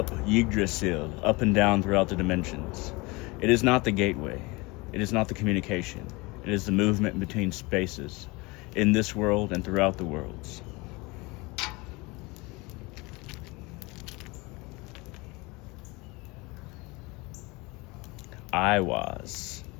Yggdrasil, up and down throughout the dimensions. It is not the gateway. It is not the communication. It is the movement between spaces in this world and throughout the worlds. Iwaz,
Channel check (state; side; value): quieter; right; 24.9 dB